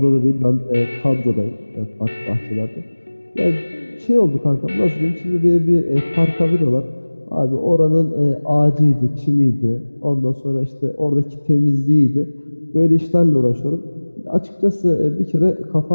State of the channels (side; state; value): both; inverted; correlation -1.00